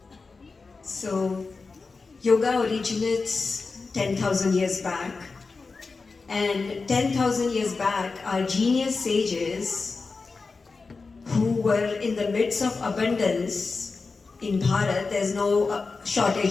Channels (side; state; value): right; quieter; 4.2 dB